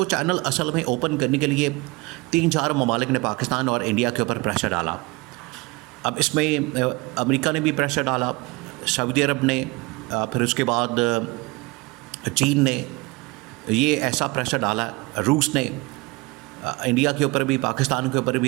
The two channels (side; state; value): left; quieter; 25.0 dB